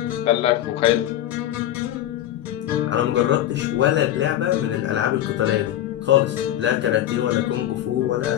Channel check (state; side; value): quieter; right; 12.4 dB